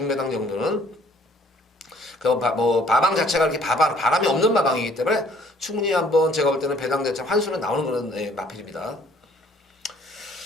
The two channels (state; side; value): normal; both; correlation 0.59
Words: 정도는. 뭐 마방 자체가 이렇게 바람이 없는 마방이기 때문에 충분히 한번 제가 볼 때는 배당 자체 환수는 나오는 그런 마필입니다.